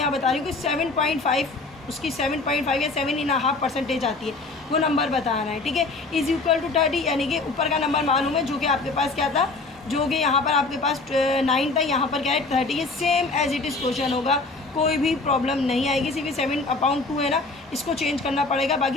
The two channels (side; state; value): right; quieter; 3.5 dB